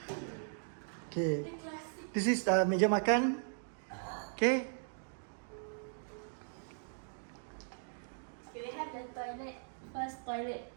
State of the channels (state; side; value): silent; left; digital silence